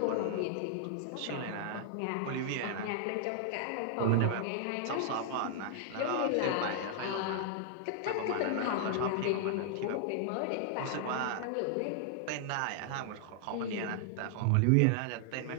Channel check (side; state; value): both; different; correlation -0.01